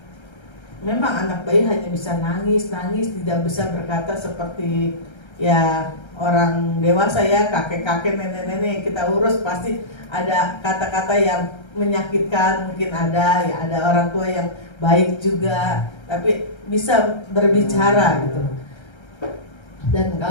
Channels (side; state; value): right; late; 1.3 ms